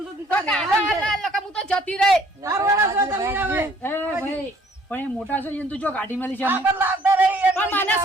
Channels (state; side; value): normal; both; correlation 0.59